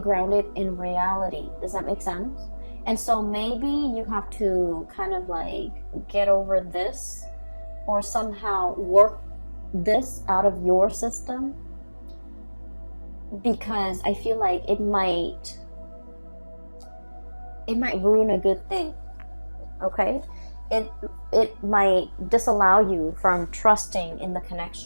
in reality. Does that make sense? And so maybe you have to kind of like get over this or somehow work this out of your system, because I feel like it might ruin a good thing, okay? It might disallow you from trusting in the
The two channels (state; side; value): inverted; both; correlation -1.00